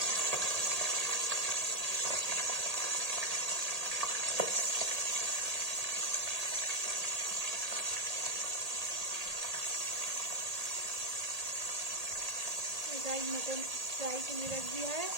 गाइस मटन फ्राई के लिए रख दिया है,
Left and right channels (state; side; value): late; left; 1.8 ms